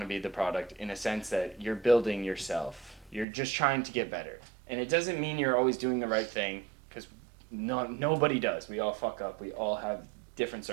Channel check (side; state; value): left; drops out; at 3.2 s